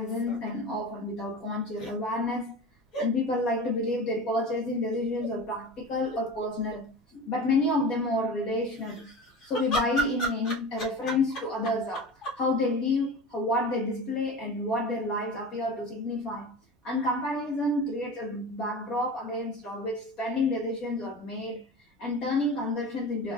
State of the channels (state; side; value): normal; both; correlation 0.32